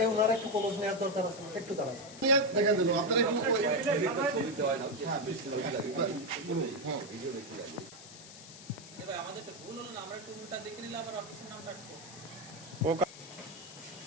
এই ওনার একটু কলস নেওয়ার দরকার আছে, একটু দাঁড়ান। দেখা দিল আপনারা একটু আমাদের তো ভুল হলো না, আমরা একটু উল্টা দেখে নিলাম আবার অফিসের নামটা আসবো। ও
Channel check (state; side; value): noise; left; hiss, 16 dB below the sound